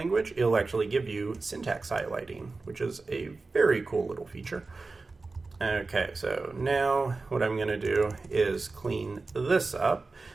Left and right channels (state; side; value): quieter; left; 3.8 dB